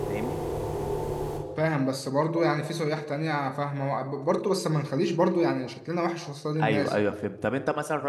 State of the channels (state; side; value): identical; both; correlation 1.00